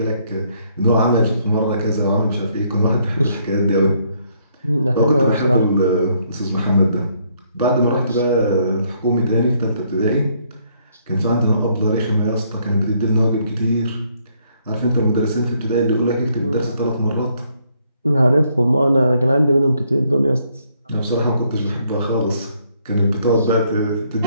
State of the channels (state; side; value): inverted; both; correlation -0.69